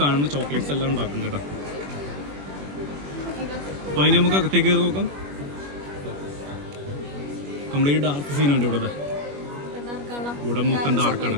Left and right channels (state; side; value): late; left; 21 ms